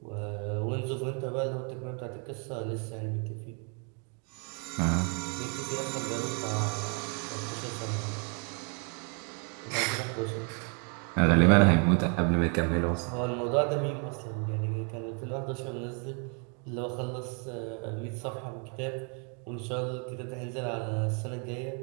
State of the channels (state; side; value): quieter; left; 38.8 dB